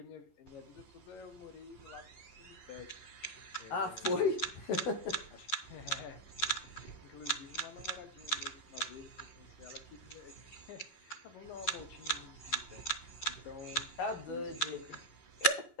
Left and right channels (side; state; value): right; late; 11 ms